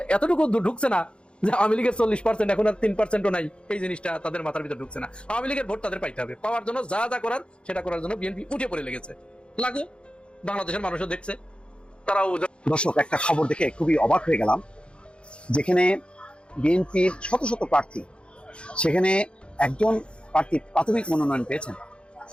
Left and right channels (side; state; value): right; late; 0.056 ms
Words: এতটুকু ঢুকছে না যে আওয়ামী লীগের 40% এখন আর 3%ও নাই, এই জিনিসটা তাদের মাথার ভিতরে ঢুকছে না। আওয়ামী লীগের ভোট তাদের পাইতে হবে, পাওয়ার জন্য যা যা করার সেটা করার জন্য বিএনপি উঠে পড়ে লেগেছে। লাগু বাংলাদেশের মানুষও দেখছে, তারাও। দর্শক, একটা খবর দেখে খুবই অবাক হয়ে গেলাম। যেখানে বিএনপির শত শত প্রার্থী, সেখানে একজন প্রার্থী প্রাথমিক মনোনয়ন পেয়েছেন,